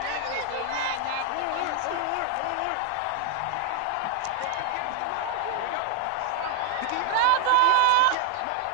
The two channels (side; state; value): both; different; correlation 0.00